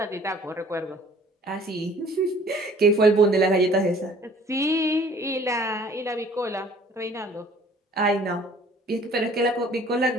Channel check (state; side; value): normal; both; correlation 0.53